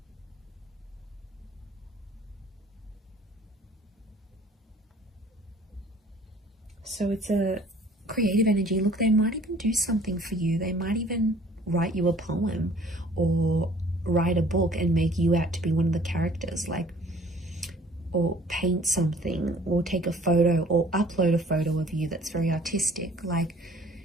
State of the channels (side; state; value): both; normal; correlation 0.54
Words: So it's a creative energy. Look, they might even do something for you. They might even write you a poem or write a book and make you out to be one of the characters, like, or paint something, or take a photo, or upload a photo of you that's very artistic. Like,